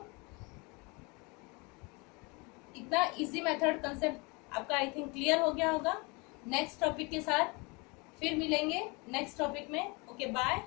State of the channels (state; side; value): quieter; right; 28.4 dB